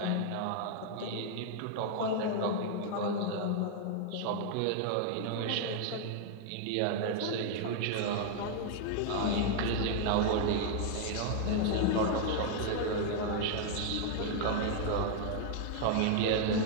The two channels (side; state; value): both; different; correlation 0.00